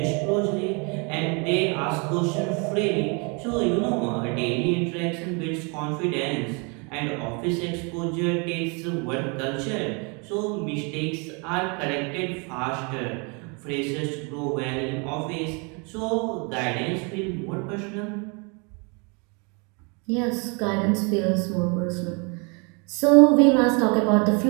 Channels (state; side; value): quieter; left; 32.8 dB